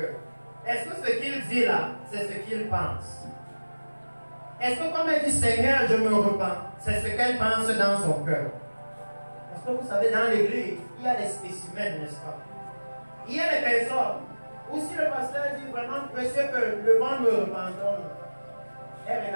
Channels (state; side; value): inverted; both; correlation -1.00